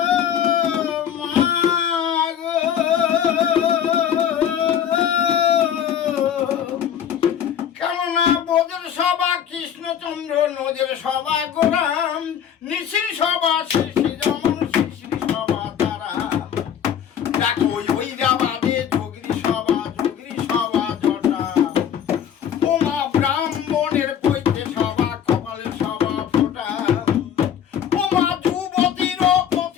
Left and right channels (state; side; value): quieter; right; 9.0 dB